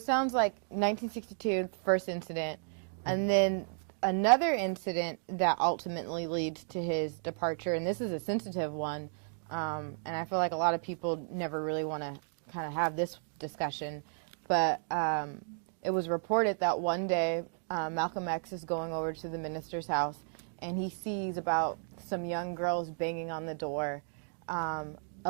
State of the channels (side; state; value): left; silent; digital silence